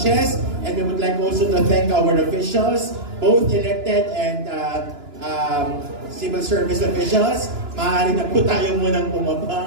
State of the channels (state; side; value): late; left; 2.9 ms